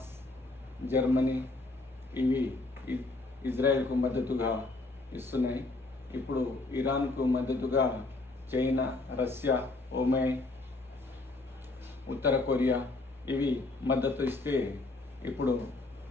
జర్మనీ ఇవి ఇజ్రాయెల్కు మద్దతుగా ఇస్తున్నాయి. ఇప్పుడు ఇరాన్కు మద్దతుగా చైనా, రష్యా, ఒమన్, ఉత్తర కొరియా ఇవి మద్దతు ఇస్తే ఇప్పుడు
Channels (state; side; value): quieter; right; 3.2 dB